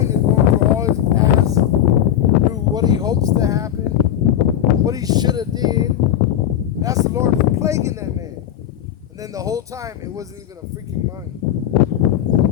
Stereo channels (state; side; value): quieter; right; 11.1 dB